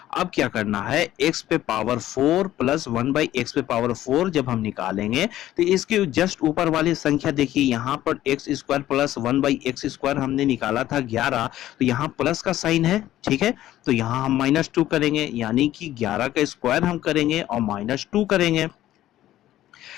अब क्या करना है, x पे पावर 4 प्लस 1/x पे पावर 4 जब हम निकालेंगे तो इसके जस्ट ऊपर वाली संख्या देखिए, यहाँ पर x square plus 1/x square हमने निकाला था 11, तो यहाँ प्लस का साइन है, ठीक है। तो यहाँ हम -2 करेंगे, यानी कि 11 का स्क्वायर हम करेंगे और -2 करेंगे,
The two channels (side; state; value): right; quieter; 13.7 dB